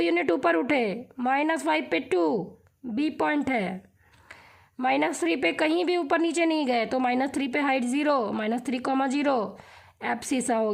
ऊपर उठे, -5 पे 2 बी पॉइंट है। -3 पे कहीं भी ऊपर नीचे नहीं गए, तो -3 पे हाइट 0, -3, 0 एब्सिसा हो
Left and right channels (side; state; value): both; identical; correlation 1.00